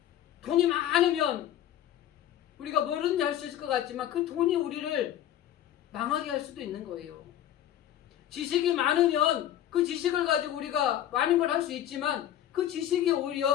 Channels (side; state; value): right; quieter; 11.6 dB